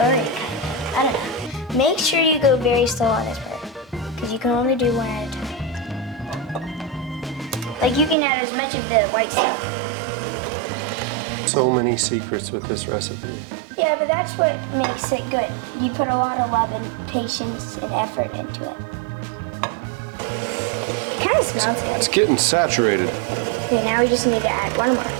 I don't know. Make sure you go very slow on this part, because you can only do 1 at a time. Like, you can add as much of the white stuff. So many secrets with this recipe. Yeah, but that's what makes it good. You put a lot of love and patience and effort into it. It kind of smells good. It's getting saturated. Okay, now we just need to add 1 more.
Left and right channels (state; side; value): drops out; left; at 8.2 s